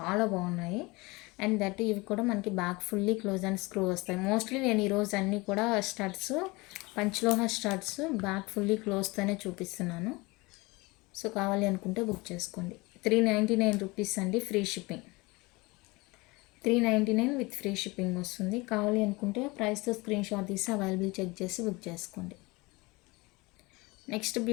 బాగున్నాయి. అండ్ దట్ ఇవి కూడా మనకి back fully close and screw వస్తాయి. మోస్ట్లీ నేను ఈరోజు అన్నీ కూడా స్టడ్స్, పంచలోహ స్టడ్స్ బ్యాక్ ఫుల్లీ క్లోజ్తోనే చూపిస్తున్నాను. సో కావాలి అనుకుంటే బుక్ చేసుకోండి. 399 రూపీస్ అండి free shipping. 399 with free shipping వస్తుంది. కావాలి అనుకుంటే ప్రైస్తో స్క్రీన్ షాట్ తీసి అవైలబుల్ చెక్ చేసి బుక్ చేసుకోండి. నెక్స్ట్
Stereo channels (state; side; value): quieter; right; 24.0 dB